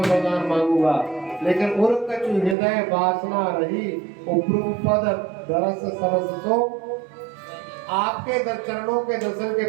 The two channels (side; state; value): left; drops out; at 2.6 s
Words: वरदान मांगूंगा, लेकिन उर कछु हृदय वासना रही उपरू पद दरस सरस तो आपके चरणों के दर्शन के